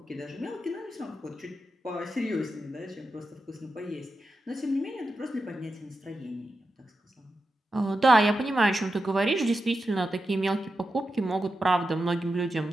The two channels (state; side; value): normal; both; correlation 0.89